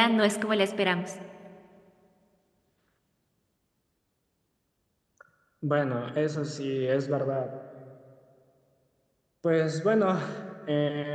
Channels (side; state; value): both; identical; correlation 1.00